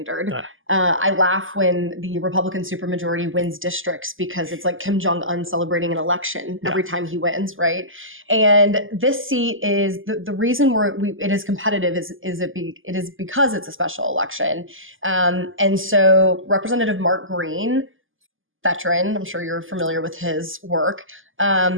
I laugh when the Republican supermajority wins districts because it's like Kim Jong-un celebrating an election every time he wins, right? And this seat is the reason it is competitive it is because it's a special election. And so Representative Mark Green, veteran, I'm sure you're familiar with his work,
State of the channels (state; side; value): late; left; 0.58 ms